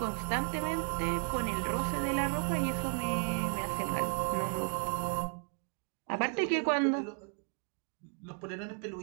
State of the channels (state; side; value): quieter; left; 37.8 dB